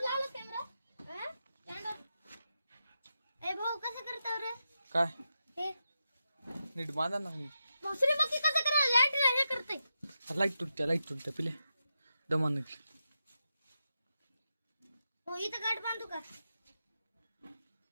लावलं कॅमेरा. स्टँडवर. ए भाऊ, कसं करताव रे काय हे? नीट बांधा ना. दुसरी बाकी कसं करा. लाईट हे करते. लाईट तुटत्या पिले दमा निघली. हो, इथं गाठ बांधू का?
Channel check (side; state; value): both; inverted; correlation -0.88